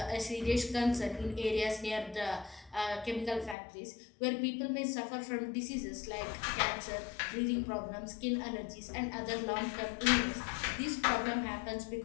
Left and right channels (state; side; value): drops out; right; at 3.6 s